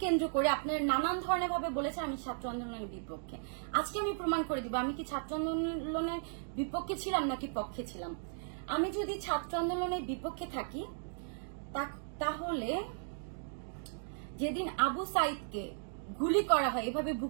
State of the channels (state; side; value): silent; left; digital silence